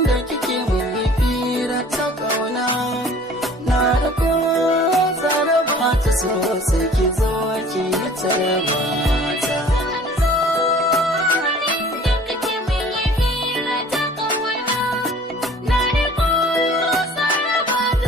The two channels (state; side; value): normal; both; correlation 0.49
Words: kike mun fira ta kauna na da ko zara ba ta so sai ki zo ki tarba ta